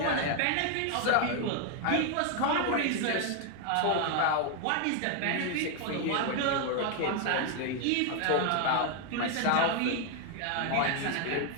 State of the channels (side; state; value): both; different; correlation 0.01